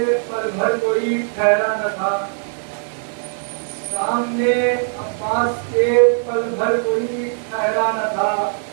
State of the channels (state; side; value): silent; left; digital silence